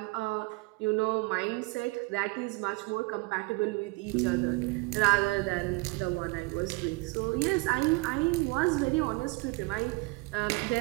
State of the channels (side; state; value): left; quieter; 25.2 dB